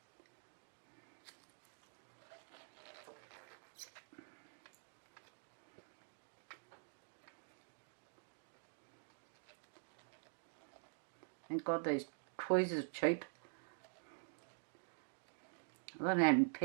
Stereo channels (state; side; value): silent; left; digital silence